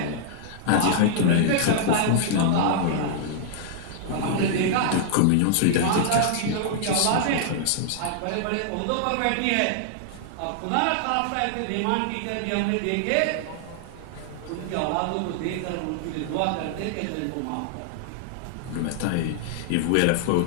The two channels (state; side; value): different; both; correlation -0.01